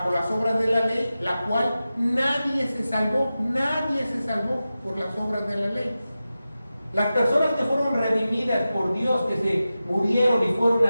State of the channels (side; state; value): both; inverted; correlation -0.93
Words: las obras de la ley, la cual nadie se salvó por las obras de la ley. Las personas que fueron redimidas por Dios, que se murieron y fueron